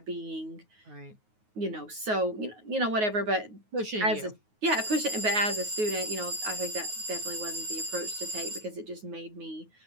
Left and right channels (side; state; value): left; late; 9.5 ms